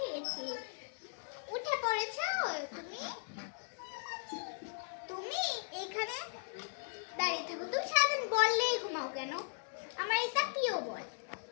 গেছে। উঠে পড়েছো তুমি? তুমি এইখানে দাঁড়িয়ে থাকো। তুমি সারাদিন বললেই ঘুমাও কেন? আমার এটা প্রিয় বল।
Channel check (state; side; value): silent; right; digital silence